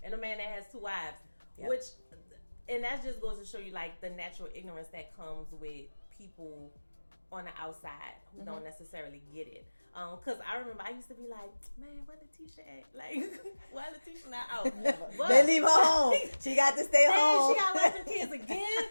and a man that has 2 wives. And that just goes to show you, like, the natural ignorance that comes with people on the outside who don't necessarily get it. Because I remember I used to be like, man, where Letitia at? Like, why Letitia not out? But, they leave her home. She got to stay home. She got to watch the kids again,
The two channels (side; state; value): both; inverted; correlation -1.00